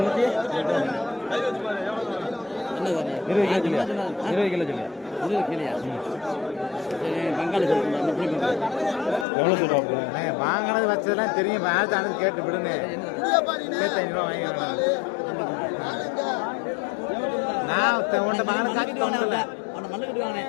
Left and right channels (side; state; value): right; drops out; at 9.2 s